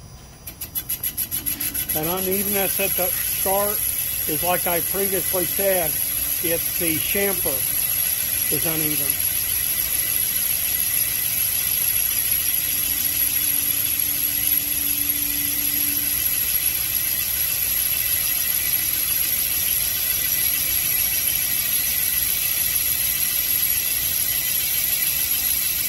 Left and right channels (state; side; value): identical; both; correlation 1.00